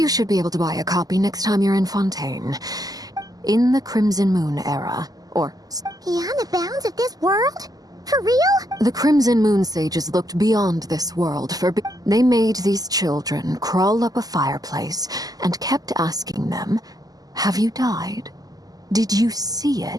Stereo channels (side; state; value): left; late; 0.18 ms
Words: should be able to buy a copy next time you're in Fontaine. In the Crimson Moon era, or... Beyond the bounds of this world? For real? The Crimson Moon sages looked beyond this world for... They made these children crawl up a fireplace and kept asking them, "Have you died? Did you see